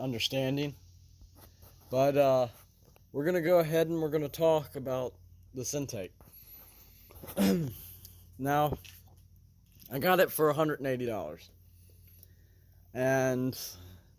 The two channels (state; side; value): identical; both; correlation 1.00